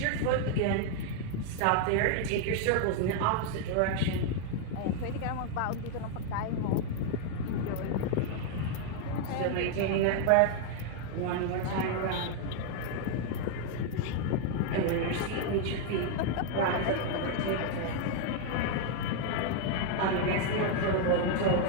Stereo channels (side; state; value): both; different; correlation 0.00